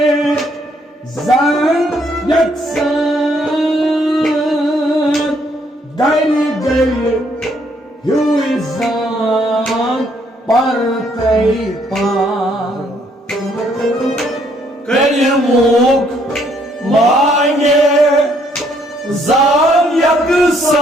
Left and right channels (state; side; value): normal; both; correlation 0.69